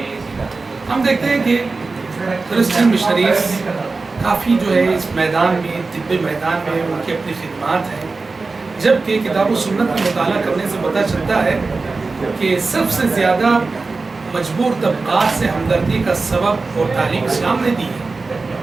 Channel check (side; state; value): left; quieter; 3.9 dB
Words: हम देखते हैं कि क्रिश्चियन मिशनरीज़ काफ़ी जो है इस मैदान में, तिब्बी मैदान में उनकी अपनी खिदमात हैं, जबकि किताब व सुन्नत का मुताला करने से पता चलता है कि सबसे ज़्यादा मजबूर तबक़ात से हमदर्दी का सबब और तालीम इस्लाम ने दी है।